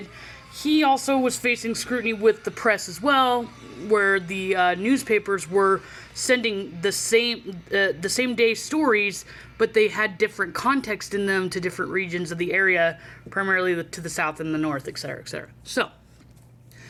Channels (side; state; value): both; identical; correlation 1.00